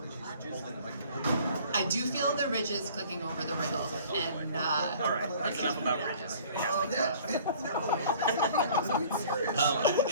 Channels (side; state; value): both; inverted; correlation -0.51